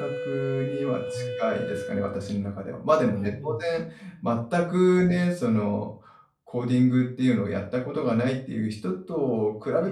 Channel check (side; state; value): both; identical; correlation 1.00